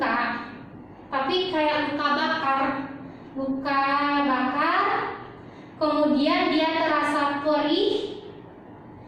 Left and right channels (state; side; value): identical; both; correlation 1.00